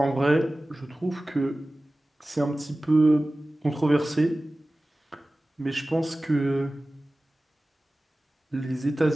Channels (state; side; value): normal; both; correlation 0.97